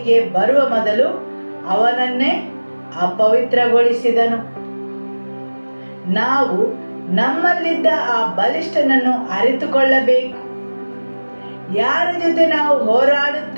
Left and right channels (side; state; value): both; inverted; correlation -1.00